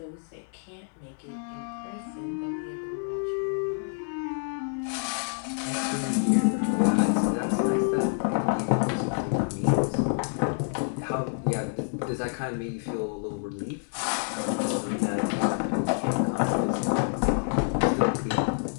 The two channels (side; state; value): right; silent; digital silence